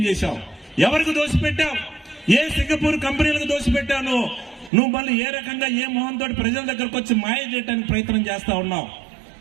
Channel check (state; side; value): drops out; left; at 4.7 s